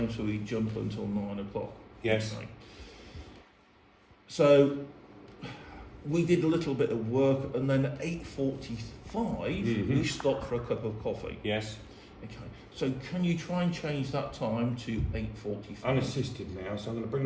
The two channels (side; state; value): both; identical; correlation 1.00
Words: so we jump until 9 o'clock. Yes. Okay. So we did a little bit of work, and then at 8:45 we stopped for a cup of coffee. Yes. Okay. So can you try and change that time to 8:45? Unassisted now, so I'm going to